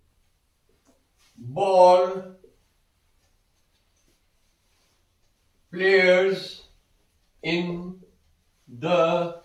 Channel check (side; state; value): both; identical; correlation 1.00